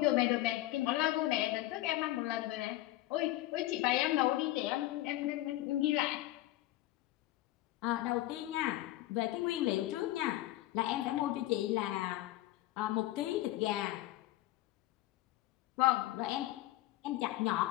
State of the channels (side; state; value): right; quieter; 16.2 dB